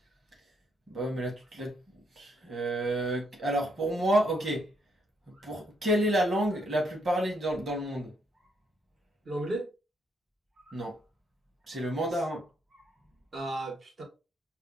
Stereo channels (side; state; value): both; normal; correlation 0.74